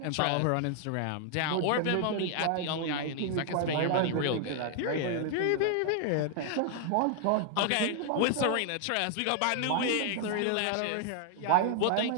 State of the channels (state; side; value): different; both; correlation 0.00